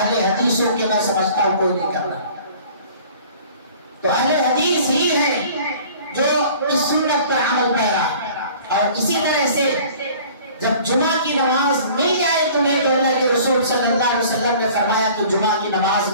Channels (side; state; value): both; inverted; correlation -0.48